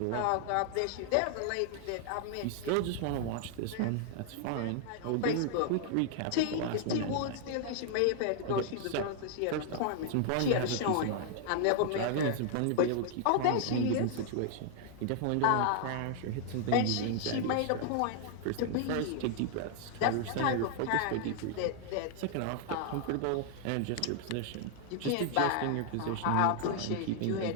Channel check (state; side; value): different; both; correlation 0.00